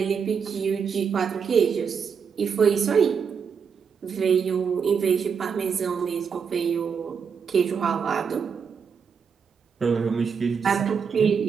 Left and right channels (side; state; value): left; quieter; 6.4 dB